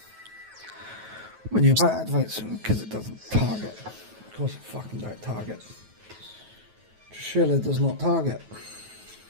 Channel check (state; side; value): late; left; 9.3 ms